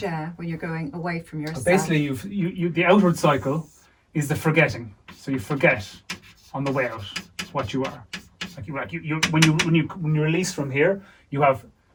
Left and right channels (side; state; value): both; identical; correlation 1.00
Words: when you're going away from yourself? So basically, you the outward cycle is the forgetting. So you forget on the way out what you are. When you release from here, you have